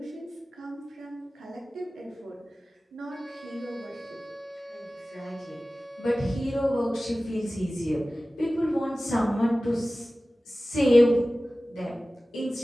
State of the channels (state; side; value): normal; both; correlation 0.97